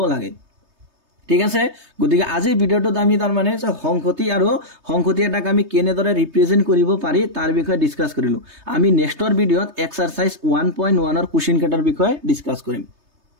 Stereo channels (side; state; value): left; late; 3.3 ms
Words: লাগে ঠিক আছে গতিকে আজিৰ ভিডিওটোত আমি তাৰ মানে সংহতি আৰু সংহতি এটাক আমি কেনেদৰে ৰিপ্ৰেজেন্ট কৰিব পাৰি তাৰ বিষয়ে ডিসকাস কৰিলো আমি নেক্সটৰ ভিডিওত এক্সাৰসাইজ 1.1 ৰ কোৱেশ্চন কাটাৰ বিষয়ে ডিসকাস কৰিম